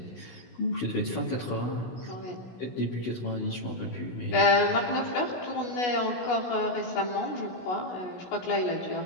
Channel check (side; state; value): right; late; 16 ms